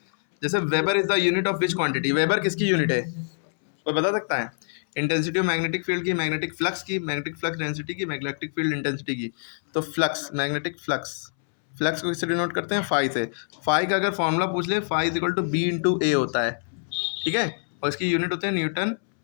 जैसे weber is the unit of which quantity, weber किसकी यूनिट है, कोई बता सकता है? इंटेंसिटी ऑफ मैग्नेटिक फील्ड की, मैग्नेटिक फ्लक्स की, मैग्नेटिक फ्लक्स डेंसिटी की, मैग्नेटिक फील्ड इंटेंसिटी की। तो फ्लक्स, मैग्नेटिक फ्लक्स, फ्लक्स को किससे डिनोट करते हैं? फाई से। फाई का अगर फॉर्मूला पूछ ले, phi is equal to B into A होता है, ठीक है। और इसकी यूनिट होते हैं न्यूटन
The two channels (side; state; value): right; silent; 62 dB below the other